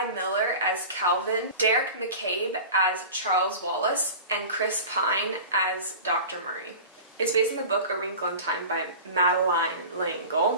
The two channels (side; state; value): both; inverted; correlation -0.35